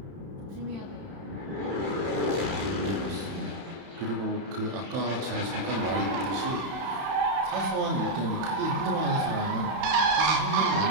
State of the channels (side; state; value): left; late; 31 ms